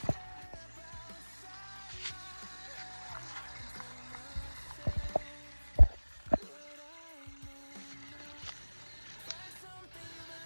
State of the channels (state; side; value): inverted; both; correlation -1.00